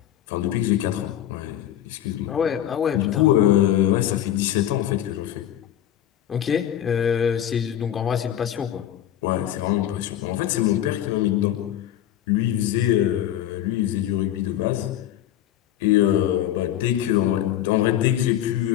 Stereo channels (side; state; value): right; quieter; 11.6 dB